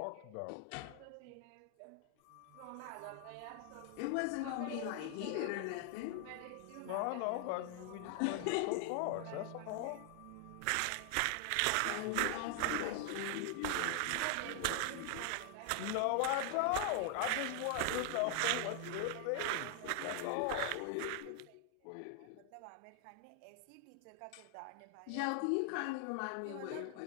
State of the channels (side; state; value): both; different; correlation 0.00